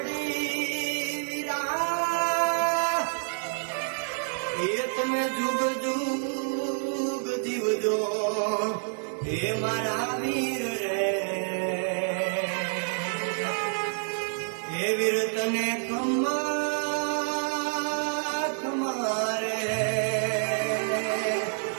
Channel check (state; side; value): silent; left; 59 dB below the other